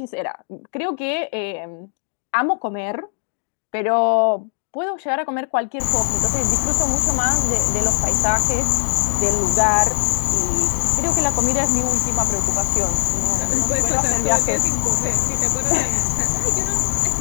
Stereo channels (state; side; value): silent; right; 56 dB below the other